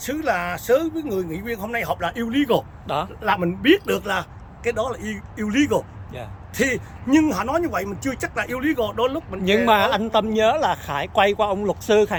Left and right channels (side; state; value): both; identical; correlation 1.00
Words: là sớ với người nghị viên hôm nay họp là illegal đó, là mình biết được là cái đó là illegal. Thì nhưng họ nói như vậy mình chưa chắc là illegal. Đôi lúc mình nhưng mà anh Tâm nhớ là Khải quay qua ông luật sư